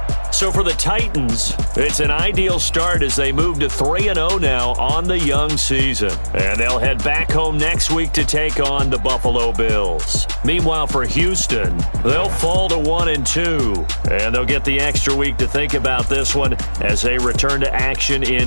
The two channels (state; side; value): inverted; both; correlation -1.00